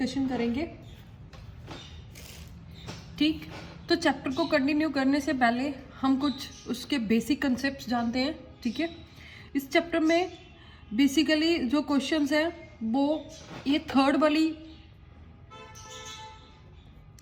करेंगे। ठीक, तो चैप्टर को कंटिन्यू करने से पहले हम कुछ उसके बेसिक कंसेप्ट जानते हैं। ठीक है, इस चैप्टर में बेसिकली जो क्वेश्चंस हैं वो ये थर्ड वाली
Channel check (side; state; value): both; identical; correlation 1.00